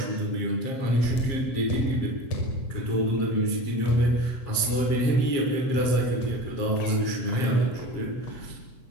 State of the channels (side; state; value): right; late; 7.4 ms